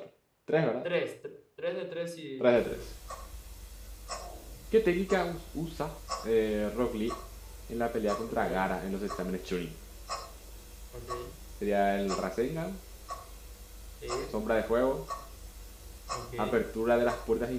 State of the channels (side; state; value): both; identical; correlation 1.00